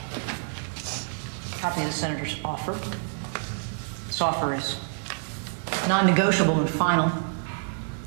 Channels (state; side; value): silent; left; 60 dB below the other